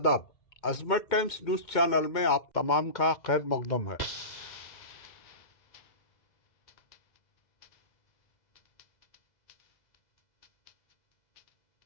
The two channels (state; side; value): late; right; 2.2 ms